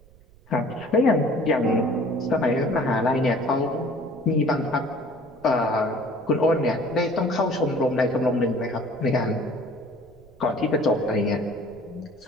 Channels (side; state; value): right; noise; rumble, 27 dB below the sound